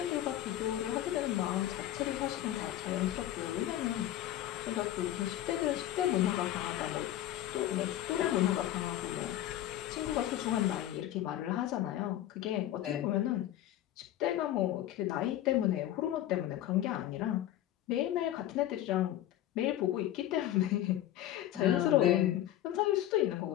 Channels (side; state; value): right; quieter; 13.0 dB